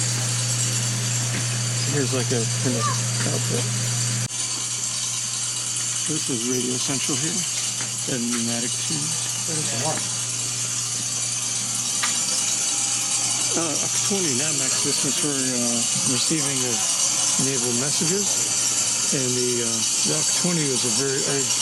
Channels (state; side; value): identical; both; correlation 1.00